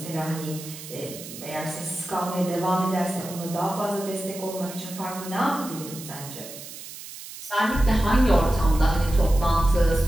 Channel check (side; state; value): right; noise; hiss, 13 dB below the sound